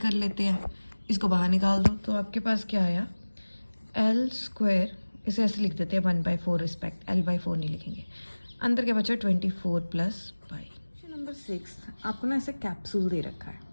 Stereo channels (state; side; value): inverted; both; correlation -1.00